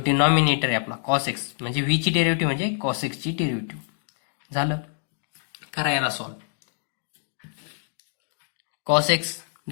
डिनॉमिनेटर आहे आपला कॉस एक्स म्हणजे व्ही ची डेरिव्हेटिव्ह म्हणजे कॉस एक्सची डेरिव्हेटिव्ह. झालं करा याला सॉल्व. कॉस एक्स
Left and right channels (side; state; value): right; silent; digital silence